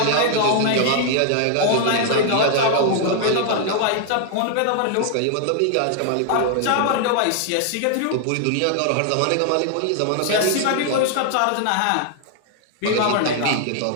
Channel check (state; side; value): different; both; correlation 0.00